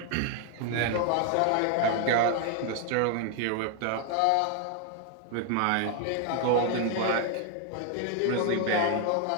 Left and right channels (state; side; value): different; both; correlation 0.01